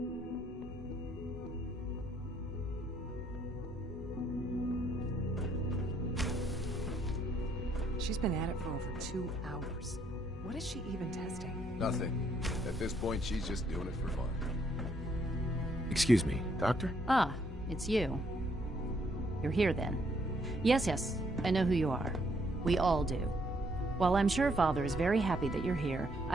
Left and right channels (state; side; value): normal; both; correlation 0.70